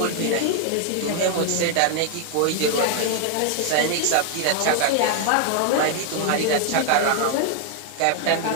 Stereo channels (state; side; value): different; both; correlation 0.00